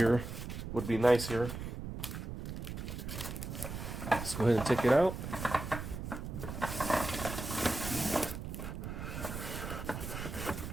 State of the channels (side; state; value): right; noise; rumble, 7 dB below the sound